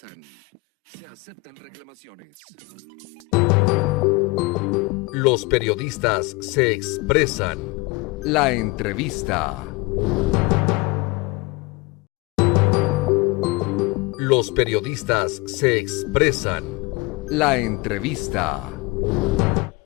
Se aceptan reclamaciones. Los periodistas se expresan. La entrevista. Los periodistas se expresan. La entrevista.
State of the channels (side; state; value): right; quieter; 23.9 dB